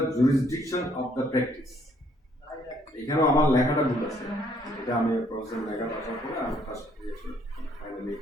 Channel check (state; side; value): normal; both; correlation 0.66